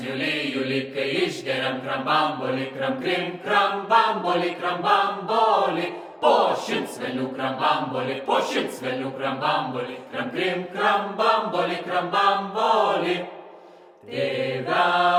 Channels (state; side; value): identical; both; correlation 1.00